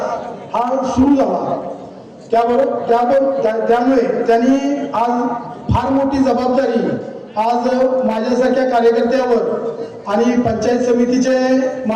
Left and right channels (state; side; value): identical; both; correlation 1.00